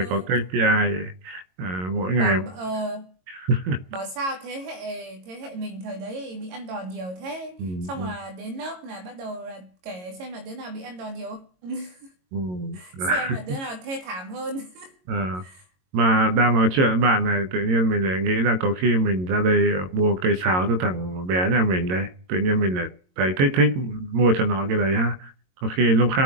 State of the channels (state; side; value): late; left; 22 ms